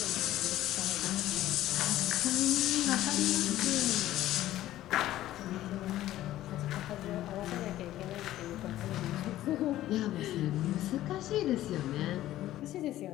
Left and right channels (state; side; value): quieter; right; 14.2 dB